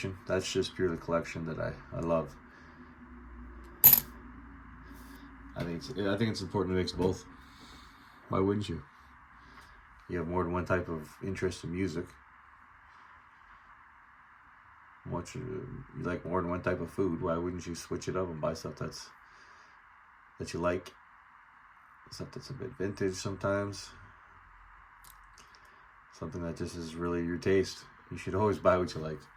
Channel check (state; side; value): identical; both; correlation 1.00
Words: That's just purely collection that I love. I think it's important to mix both. Why wouldn't you? You have more than one type of interest in music. You like more than one type of food. Why wouldn't you switch it up and buy stuff that you like? Stuff that's a bit vintage sometimes. Something that just is really your taste. You should always buy what you like.